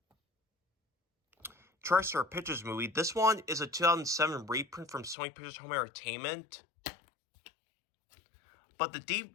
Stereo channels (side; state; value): right; drops out; at 5.2 s